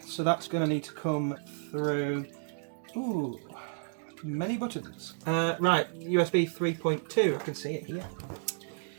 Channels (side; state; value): left; silent; digital silence